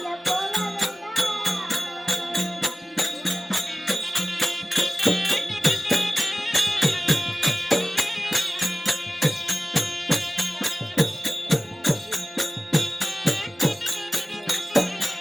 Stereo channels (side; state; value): both; normal; correlation 0.96